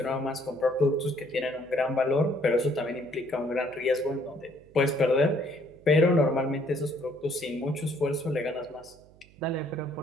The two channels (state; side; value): noise; right; hum, 26 dB below the sound